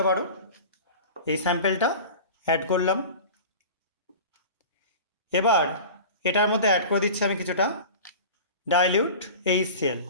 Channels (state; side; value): inverted; both; correlation -0.35